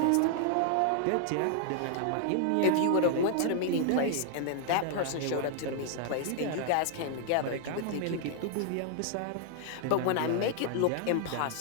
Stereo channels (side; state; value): both; different; correlation 0.00